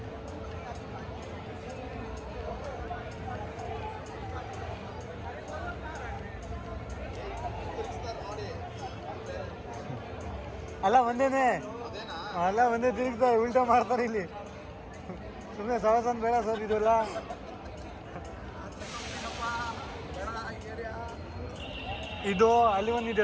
ಅಲ್ಲ ಒಂದೇನೆ ಅಲ್ಲ ಒಂದೇ ತಿರುಗ್ತಾರೆ ಉಲ್ಟಾ ಮಾಡ್ತಾರೆ ಇಲ್ಲಿ ಸುಮ್ಮನೆ ಸವಾಸನ್ ಬೇಡ ಸರ್ ಇದೆಲ್ಲ ಇದು ಅಲ್ಲಿ ಒಂದಿದೆ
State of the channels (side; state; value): both; identical; correlation 1.00